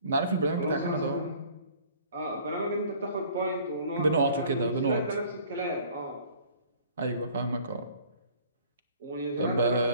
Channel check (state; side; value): inverted; both; correlation -0.52